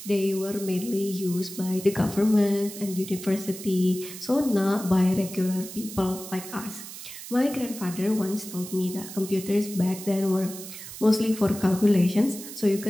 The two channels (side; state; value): right; noise; hiss, 12 dB below the sound